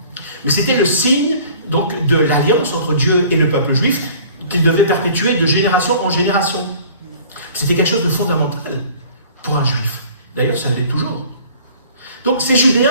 Mais c'était le signe donc, de l'alliance entre Dieu et le peuple juif qu'il devait perpétuer de génération en génération. C'était quelque chose de fondamental pour un juif. D'ailleurs, ça l'est toujours. Donc ces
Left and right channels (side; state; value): both; inverted; correlation -0.49